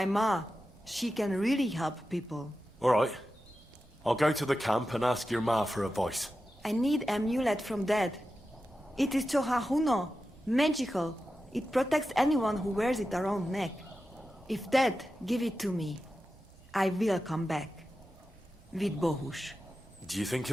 ma, she can really help people. All right. I'll go to the camp and ask your ma for advice. I need an amulet from Dad. It is ceann-feadhna, magical. It protects anyone who wears it around neck. If Dad give it to me, I will come back. With Bohus. Do you think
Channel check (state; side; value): normal; both; correlation 0.92